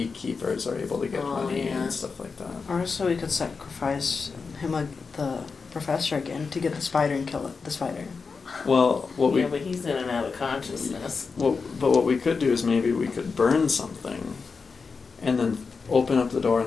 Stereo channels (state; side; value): quieter; right; 4.9 dB